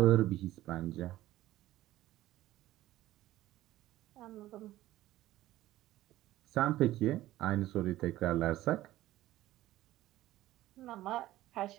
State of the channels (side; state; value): left; quieter; 15.4 dB